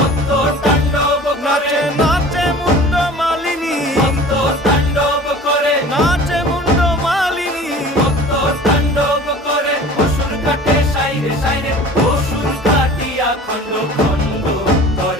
তাণ্ডব করে। নাচে মুন্ড মালিনী, মত্ত তাণ্ডব করে, নাচে মুন্ড মালিনী, মত্ত তাণ্ডব করে অসুর কাটে সাইরে সাইরে, অসুর কাটিয়া খণ্ড খণ্ড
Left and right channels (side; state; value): both; normal; correlation 0.43